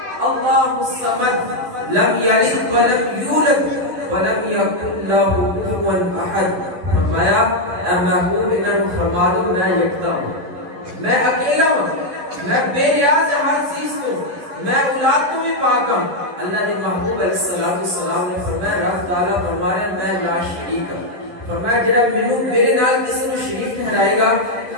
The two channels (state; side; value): late; left; 11 ms